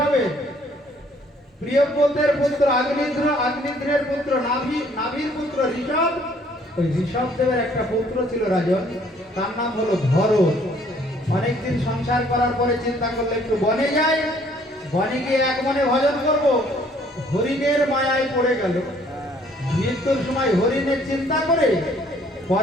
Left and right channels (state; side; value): normal; both; correlation 0.61